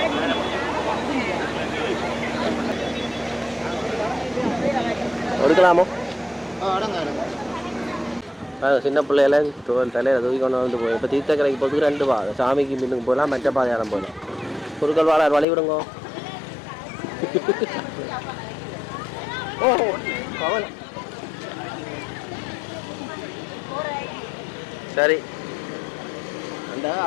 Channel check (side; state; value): right; drops out; at 15.5 s